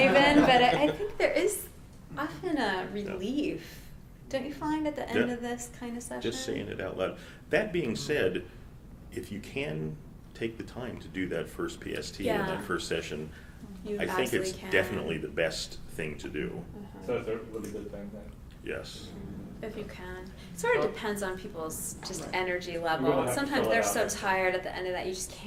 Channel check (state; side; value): identical; both; correlation 1.00